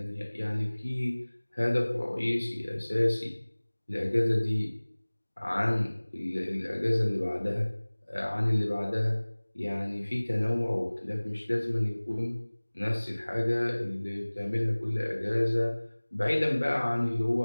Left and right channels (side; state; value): both; inverted; correlation -1.00